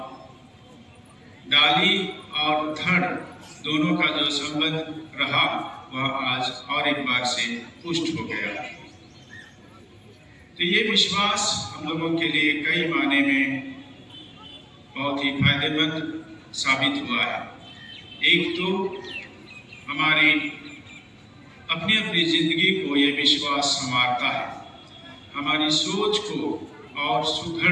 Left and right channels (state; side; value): identical; both; correlation 1.00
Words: डाली और धड़ दोनों का जो संबंध रहा वह आज और एक बार से पुष्ट हो गया। तो ये विश्वास हम लोगों के लिए कई मायने में बहुत ही फायदेमंद साबित हुआ है। एक तो हमारी अपनी अपनी जिंदगी को ये विश्वास संवारता है, हमारी सोच को और